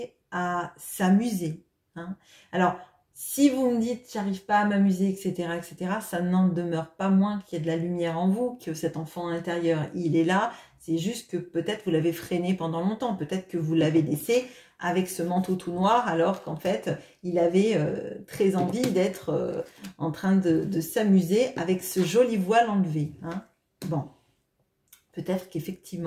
à s'amuser. Hein. Alors, si vous me dites j'arrive pas à m'amuser, etc., ça n'en demeure pas moins qu'il y a de la lumière en vous, que cet enfant intérieur, il est là. C'est juste que peut-être vous l'avez freiné pendant longtemps, peut-être que vous l'avez laissé avec ce manteau tout noir, alors qu'en fait, il avait très envie d'être en train de s'amuser avec ce joli voile enlevé. Hein. Bon, peut-être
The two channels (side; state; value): both; identical; correlation 1.00